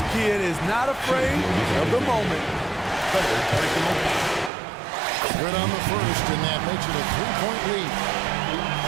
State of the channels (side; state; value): left; drops out; at 4.5 s